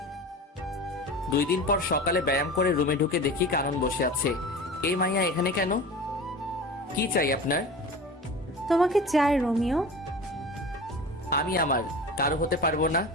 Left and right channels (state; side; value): normal; both; correlation 0.34